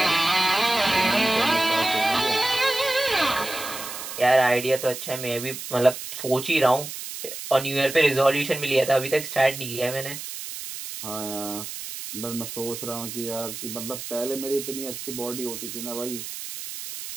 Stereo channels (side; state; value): right; noise; hiss, 9 dB below the sound